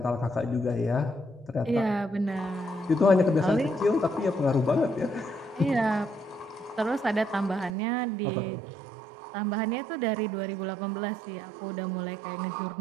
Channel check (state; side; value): drops out; left; at 7.7 s